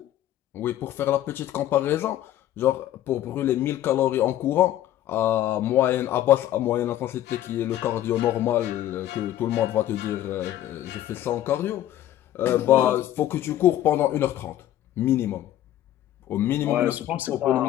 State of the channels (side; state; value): right; quieter; 12.8 dB